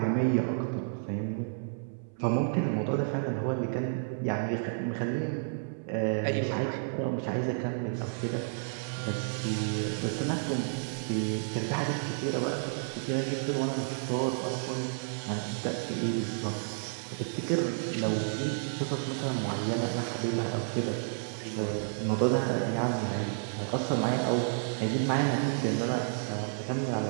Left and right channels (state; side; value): silent; left; 57 dB below the other